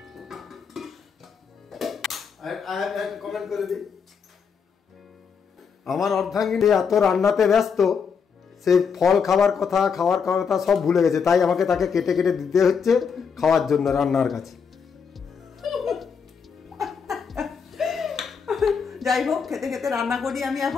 কমেন্ট করে দিই, আমার অর্ধাঙ্গিনী এত রান্নাতে ব্যস্ত, সে ফল খাওয়ার কথা সব ভুলে গেছে। তাই আমাকে তাকে কেটে কেটে দিতে হচ্ছে খাওয়ার জন্য রান্নার কাছে। যাই হোক, খেতে খেতে রান্না করি আমি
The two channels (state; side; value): quieter; right; 6.2 dB